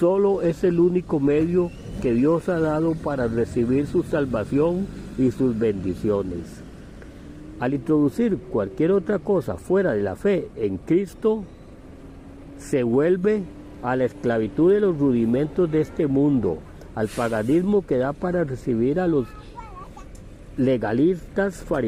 es el único medio que Dios ha dado para recibir su salvación y sus bendiciones. Al introducir cualquier otra cosa fuera de la fe en Cristo, se vuelve a la esclavitud de los rudimentos de este mundo, al paganismo que da para recibir a los legalistas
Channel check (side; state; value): both; identical; correlation 1.00